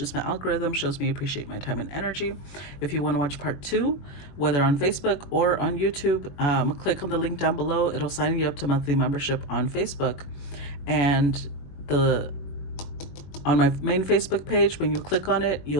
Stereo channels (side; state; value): right; late; 21 ms